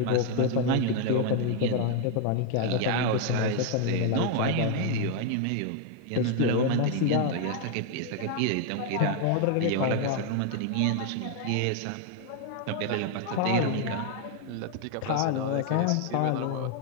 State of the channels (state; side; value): different; both; correlation 0.00